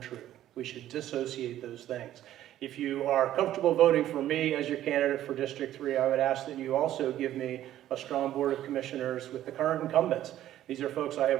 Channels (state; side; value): quieter; left; 12.7 dB